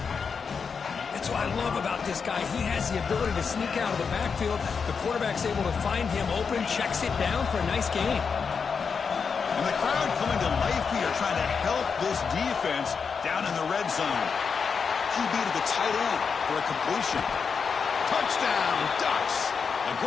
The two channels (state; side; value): quieter; right; 5.8 dB